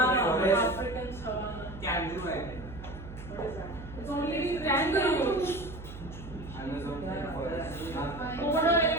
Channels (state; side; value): noise; right; hum, 13 dB below the sound